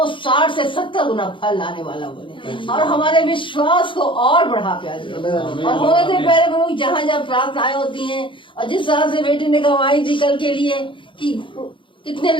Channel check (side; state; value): right; late; 0.24 ms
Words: 60 से 70 गुना फल लाने वाला बने और हमारे विश्वास को और बढ़ा प्यार प्रभु। और होने दे प्यारे प्रभु जहाँ जहाँ प्रार्थनाएं होती हैं और जिस तरह से बेटी ने गवाही दी कल के लिए कि कितने